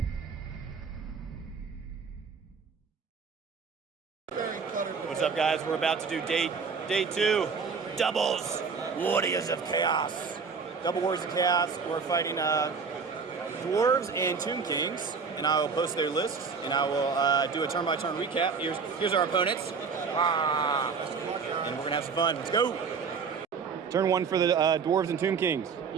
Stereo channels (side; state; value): left; quieter; 5.5 dB